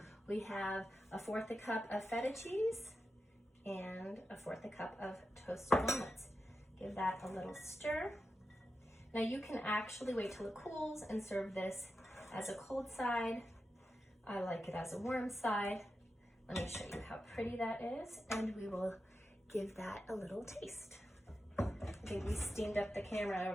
we have 1/4 cup of feta cheese and 1/4 cup of toasted walnuts. Give that a little stir. Now you can actually wait till it cools and serve this as a cold side. I like it as a warm side. Let me show you how pretty that is, and we will give that a little taste. I think we steamed up the camera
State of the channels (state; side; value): normal; both; correlation 0.90